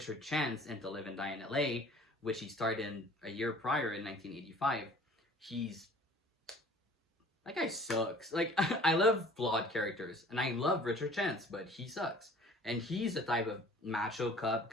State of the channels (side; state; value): both; normal; correlation 0.50